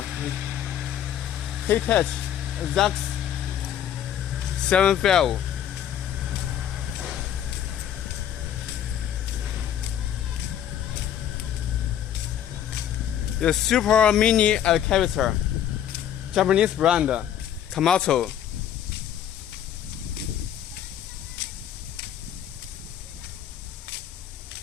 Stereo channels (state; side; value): quieter; right; 10.1 dB